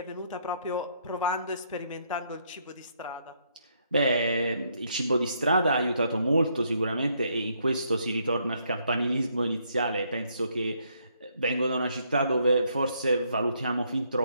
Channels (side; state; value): both; inverted; correlation -0.72